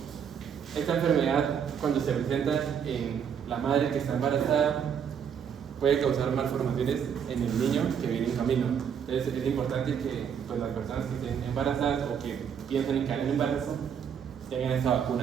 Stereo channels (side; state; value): left; quieter; 7.7 dB